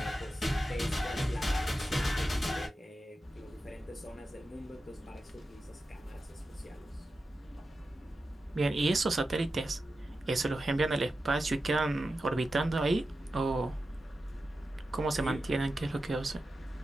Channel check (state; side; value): normal; both; correlation 0.91